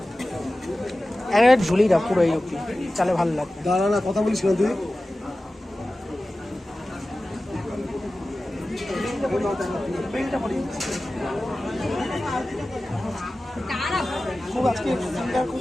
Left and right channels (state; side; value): normal; both; correlation 0.96